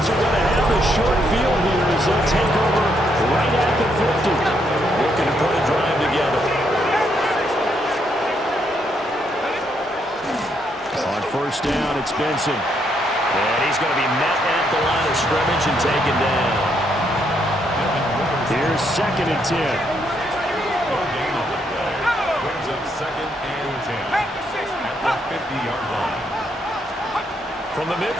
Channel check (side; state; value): both; normal; correlation 0.75